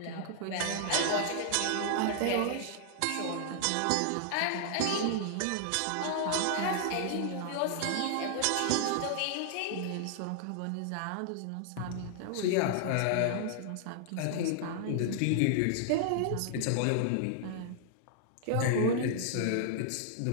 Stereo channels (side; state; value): both; different; correlation -0.01